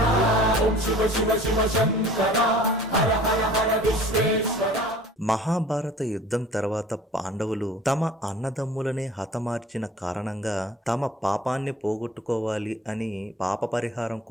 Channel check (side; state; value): both; normal; correlation 0.47